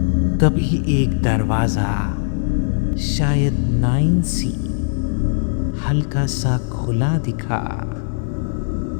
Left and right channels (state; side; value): silent; right; digital silence